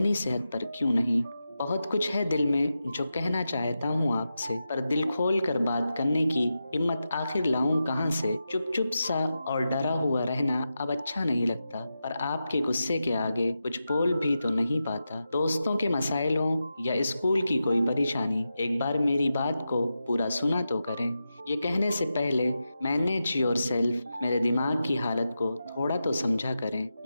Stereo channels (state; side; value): inverted; both; correlation -0.90